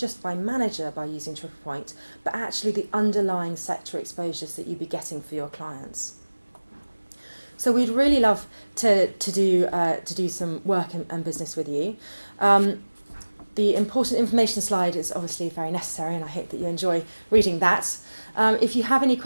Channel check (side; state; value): both; inverted; correlation -1.00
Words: by manager by using Triple Point, but actually the underlying sector exposures that you'd be getting for your clients. So we'd really love to do some work and business with you. The important information slide is obviously very necessary, and I hope that you enjoy reading that. If you have any